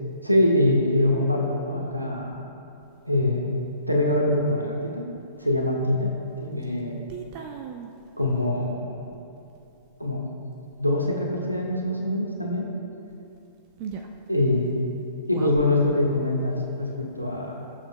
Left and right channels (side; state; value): both; inverted; correlation -0.63